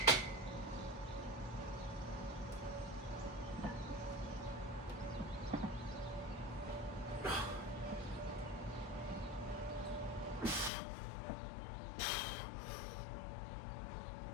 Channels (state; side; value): drops out; right; at 10.7 s